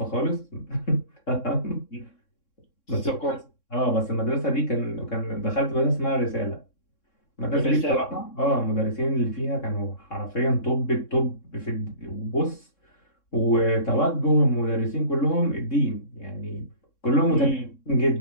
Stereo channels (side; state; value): right; late; 3.6 ms